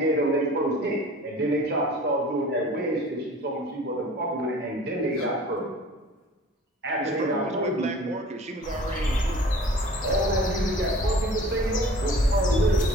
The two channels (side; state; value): both; normal; correlation 0.46